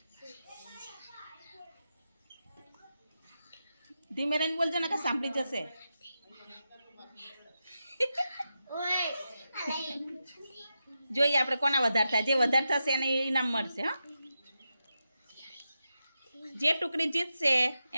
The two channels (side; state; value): both; inverted; correlation -0.89